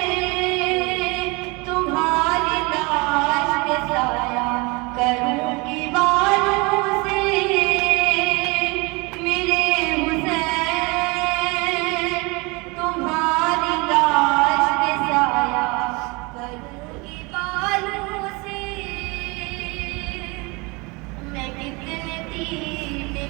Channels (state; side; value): quieter; left; 27.1 dB